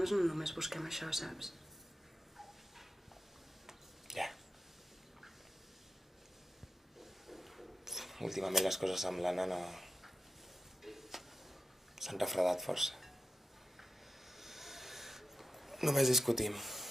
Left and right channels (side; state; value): both; normal; correlation 0.88